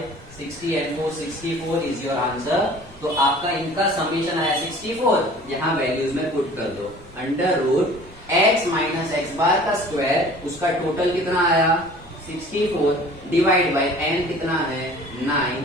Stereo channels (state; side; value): normal; both; correlation 0.47